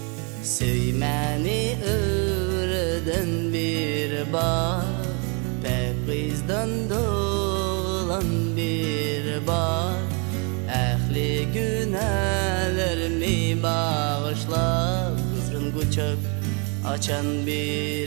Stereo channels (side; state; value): left; quieter; 34.4 dB